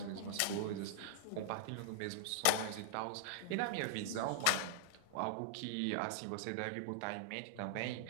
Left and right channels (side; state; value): both; different; correlation -0.01